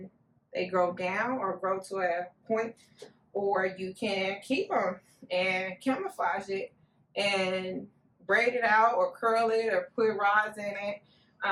they grow down or grow to a point, or you can keep them and camouflage it and braid it out or curl it or put rods in it,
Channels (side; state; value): both; identical; correlation 1.00